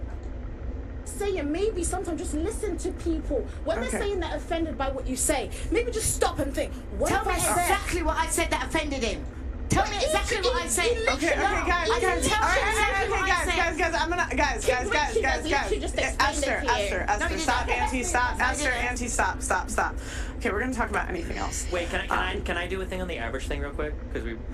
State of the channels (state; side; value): identical; both; correlation 1.00